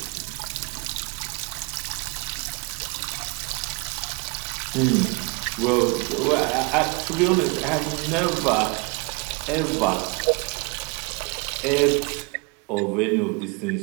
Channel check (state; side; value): quieter; left; 30.4 dB